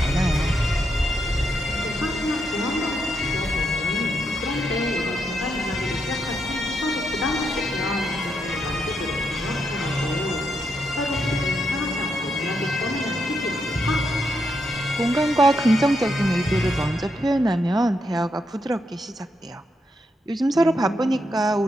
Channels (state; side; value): normal; both; correlation 0.81